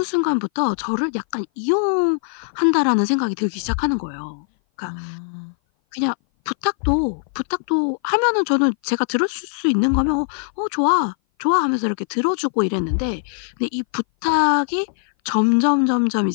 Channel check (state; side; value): silent; right; 58 dB below the other